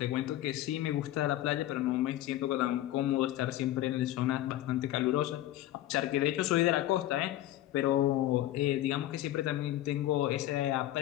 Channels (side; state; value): right; quieter; 14.1 dB